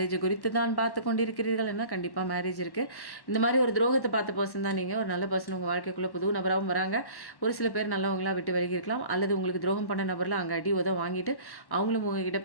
குறித்து தான் பார்த்து கொண்டிருக்கிறீர்கள் என்ன, கண்டிப்பாக மேரேஜ் இருக்குது. இந்த மாதிரி ஒரு துரோகத்தை பார்த்த பர்சன் தான் நீங்கள். ஒரு நல்ல பர்சன் உங்கள் வாழ்க்கைக்குள்ளே புது நபராகவும் வராங்க. ஒரு சில பேர் நல்லவங்களாக விட்டு விலகி இருக்கலாம், அல்லது உங்களுக்கு துரோகம் பண்ண நபரில் அங்கே அடி உதவ வாங்கிட்டு அவங்களும் உங்ககிட்ட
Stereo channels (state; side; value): late; right; 1.1 ms